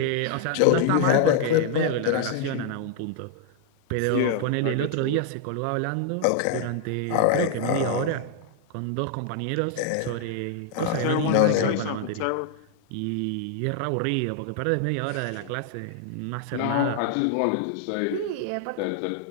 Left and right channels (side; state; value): both; different; correlation 0.00